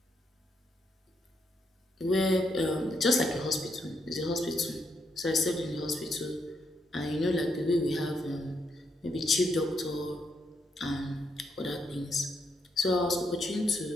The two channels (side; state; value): both; normal; correlation 0.78